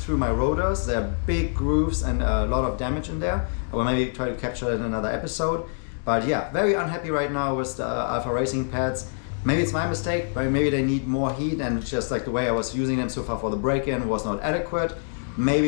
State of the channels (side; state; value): right; silent; digital silence